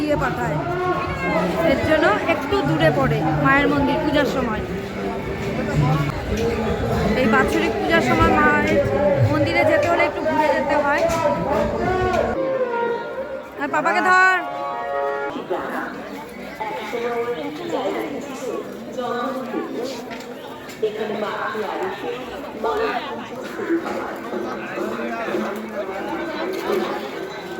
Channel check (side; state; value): both; identical; correlation 1.00